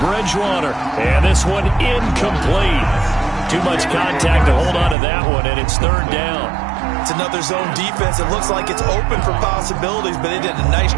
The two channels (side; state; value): left; drops out; at 5.0 s